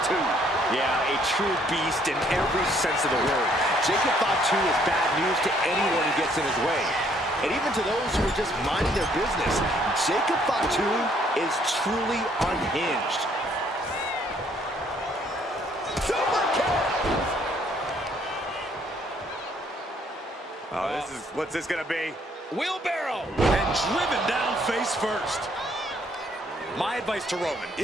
Yeah, a true beast in every sense of the word. Jacob Fatu is bad news to anyone who gets in his way. And even to those who are just minding their business, Jacob Fatu is truly unhinged. Super kick! Oh, what's this gonna be? Wheelbarrow! And driven down face first. My advice to Roman,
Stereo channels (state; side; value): normal; both; correlation 0.65